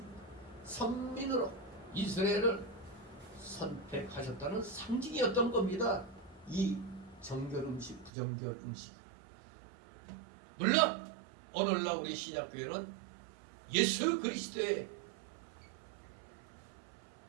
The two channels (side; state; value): left; drops out; at 8.1 s